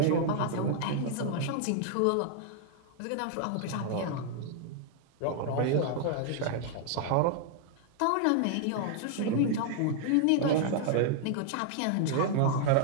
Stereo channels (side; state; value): both; different; correlation 0.00